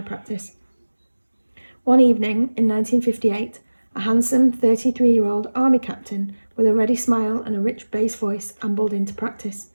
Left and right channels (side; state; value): both; inverted; correlation -1.00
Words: practice. One evening in 1958, a handsome 33-year-old army captain with a ready smile and a rich bass voice ambled into practice.